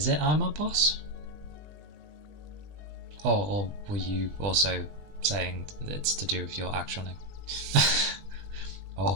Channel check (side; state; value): left; late; 20 ms